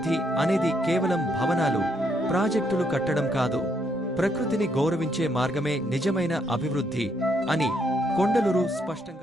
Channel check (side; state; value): both; normal; correlation 0.73